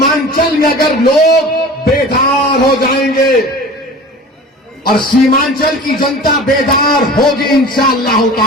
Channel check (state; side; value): normal; both; correlation 0.39